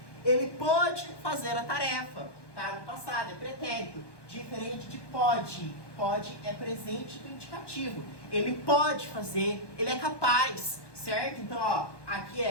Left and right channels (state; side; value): late; right; 1.1 ms